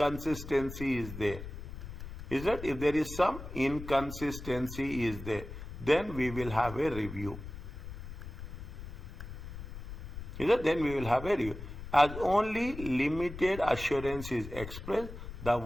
is there, is that if there is some inconsistency is there, then we will have a review. Is that? Then we will have a review. As only limited assurance is expressed, the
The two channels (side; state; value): left; noise; rumble, 10 dB below the sound